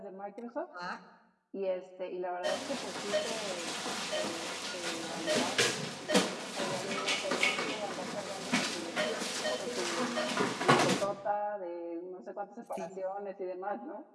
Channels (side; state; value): both; identical; correlation 1.00